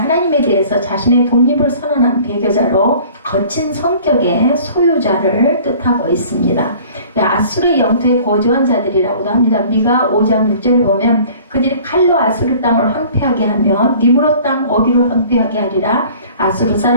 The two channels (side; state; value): both; inverted; correlation -0.49